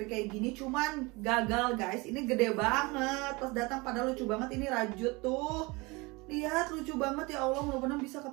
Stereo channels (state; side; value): quieter; left; 25.2 dB